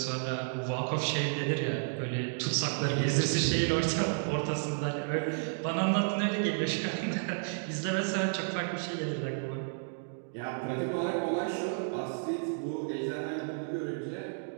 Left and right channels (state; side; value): silent; left; digital silence